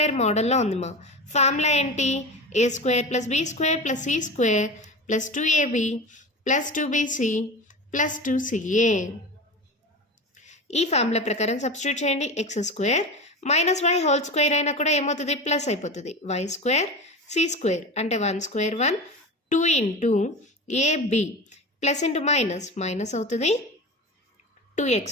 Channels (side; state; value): both; normal; correlation 0.28